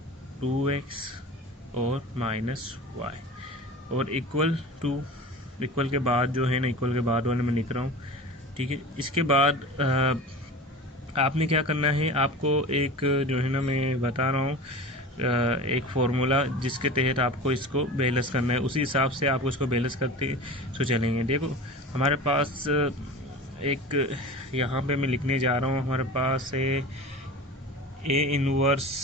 2x और माइनस y और इक्वल के बाद जो है ना, इक्वल के बाद वाले मैं लिख रहा हूँ। ठीक है, इसके बाद आपने क्या करना है, आपको एक जो है ना मैं बता रहा हूँ एक फार्मूला जिसके तहत आपको इसको बैलेंस करना है। उसी हिसाब से आपको इसको बैलेंस करते तो चलेंगे। देखो हमारे पास एक यहाँ पे मैं लिखने जा रहा हूँ, हमारे पास है ए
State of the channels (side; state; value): both; normal; correlation 0.34